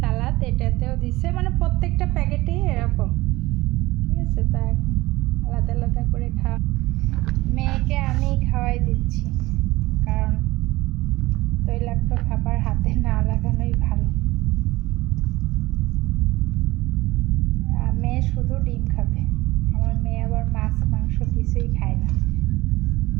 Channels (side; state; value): left; quieter; 19.4 dB